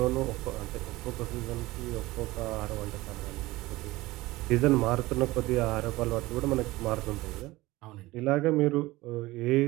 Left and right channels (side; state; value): left; quieter; 19.2 dB